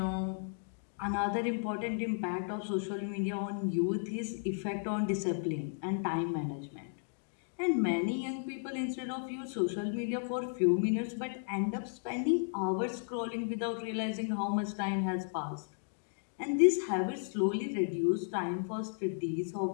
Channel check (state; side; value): silent; right; digital silence